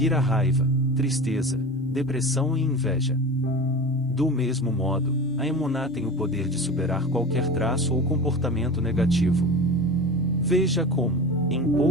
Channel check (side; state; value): both; normal; correlation 0.32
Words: a raiva, tristeza, depressão e inveja. Do mesmo modo, a emuná tem o poder de superar qualquer traço ou comportamento negativo. Veja como, em